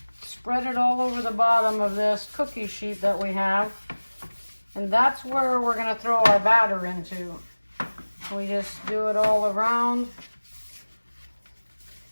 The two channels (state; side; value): inverted; both; correlation -1.00